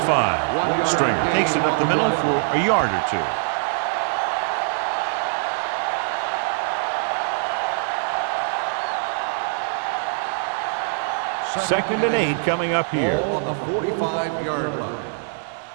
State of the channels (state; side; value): silent; left; digital silence